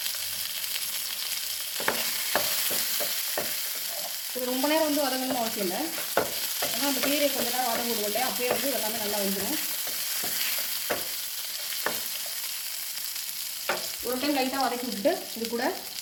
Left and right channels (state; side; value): identical; both; correlation 1.00